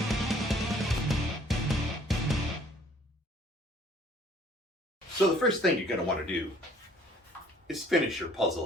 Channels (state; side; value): normal; both; correlation 0.57